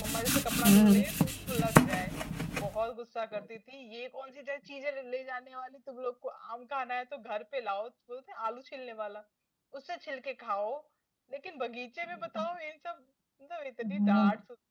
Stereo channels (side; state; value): both; identical; correlation 1.00